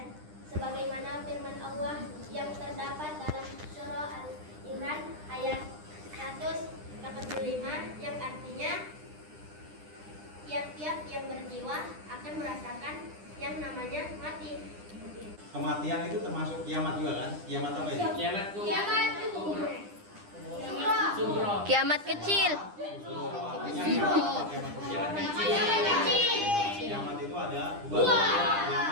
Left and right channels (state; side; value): late; left; 9.9 ms